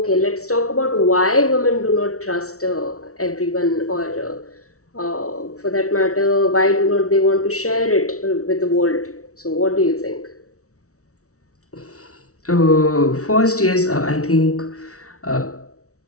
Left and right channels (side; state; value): right; late; 0.64 ms